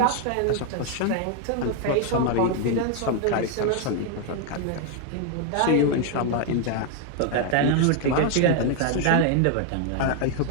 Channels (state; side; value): different; both; correlation 0.00